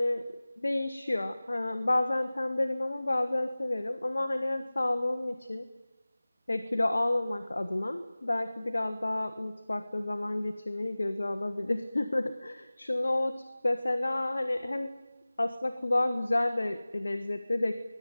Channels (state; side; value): inverted; both; correlation -0.99